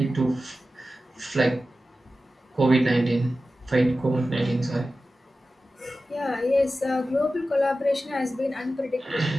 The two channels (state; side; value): normal; both; correlation 0.94